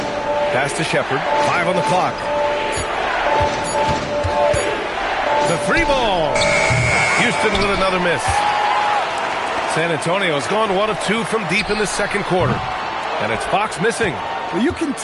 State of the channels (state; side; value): identical; both; correlation 1.00